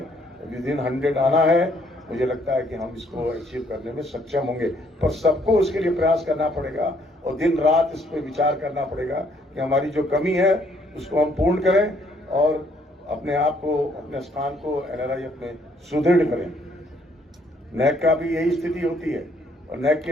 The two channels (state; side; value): normal; both; correlation 0.67